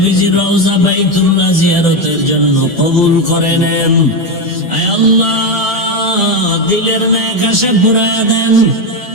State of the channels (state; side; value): normal; both; correlation 0.11